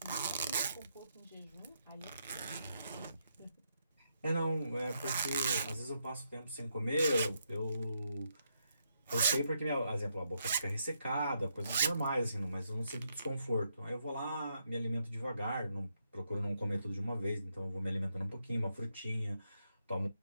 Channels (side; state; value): both; inverted; correlation -0.79